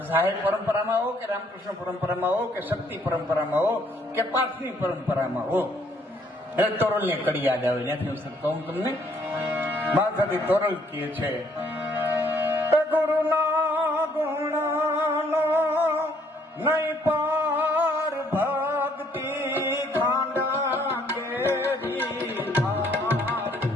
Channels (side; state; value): both; normal; correlation 0.66